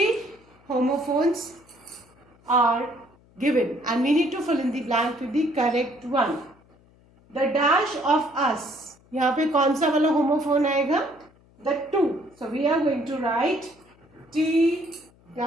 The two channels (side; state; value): left; noise; hum, 30 dB below the sound